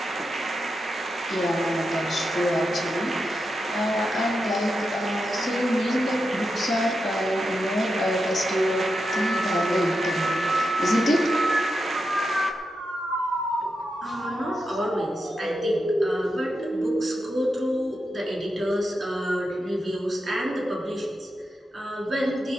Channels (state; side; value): normal; both; correlation 0.87